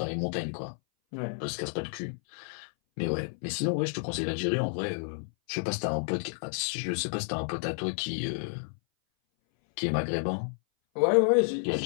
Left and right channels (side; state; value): right; silent; 57 dB below the other